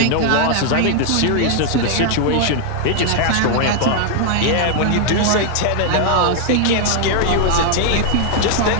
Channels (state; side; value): different; both; correlation 0.00